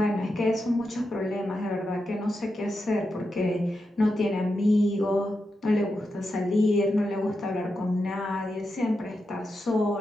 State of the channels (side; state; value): both; normal; correlation 0.87